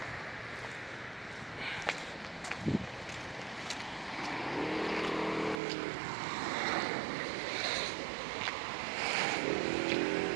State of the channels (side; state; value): left; drops out; at 5.6 s